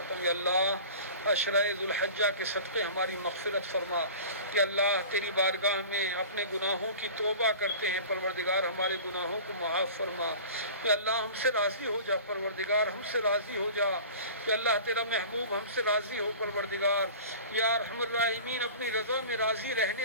ہوں. یا اللہ عشرۂ ذوالحجہ کے صدقے ہماری مغفرت فرما. یا اللہ تیری بارگاہ میں اپنے گناہوں کی توبہ کرتے ہیں پروردگار ہمارے گناہوں کو معاف فرما. یا اللہ ہم سے راضی ہو جا پروردگار ہم سے راضی ہو جا. یا اللہ تیرا محبوب ہم سے راضی ہو پروردگار. یا ارحم الراحمین اپنی رضا میں راضی رہنے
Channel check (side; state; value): both; inverted; correlation -0.40